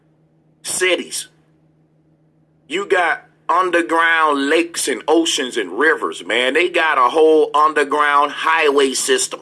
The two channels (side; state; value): both; identical; correlation 1.00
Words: cities. You got underground lakes and oceans and rivers, man. They got a whole underground highway system.